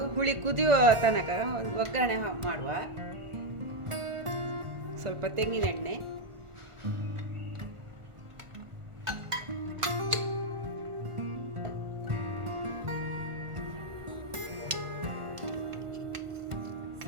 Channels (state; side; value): late; left; 1.4 ms